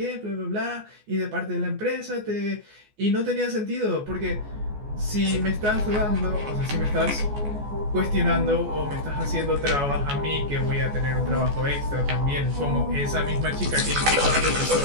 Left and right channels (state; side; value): late; left; 14 ms